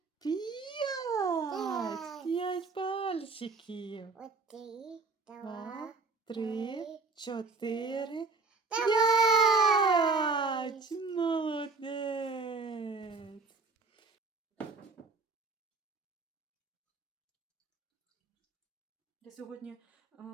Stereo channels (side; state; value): left; quieter; 4.1 dB